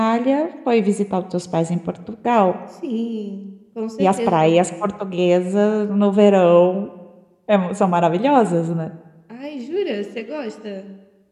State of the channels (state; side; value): identical; both; correlation 1.00